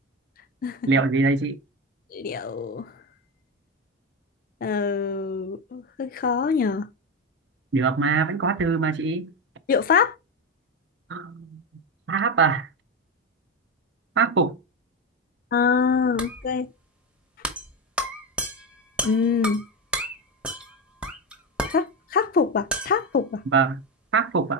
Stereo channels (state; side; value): normal; both; correlation 0.14